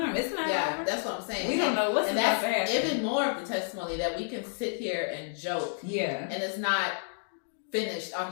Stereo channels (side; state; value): right; silent; digital silence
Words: It's not over. That's what I'm saying. We don't know what's about to happen. Even more of the testimony that we can sit here and joke. Yeah, and it's not finished on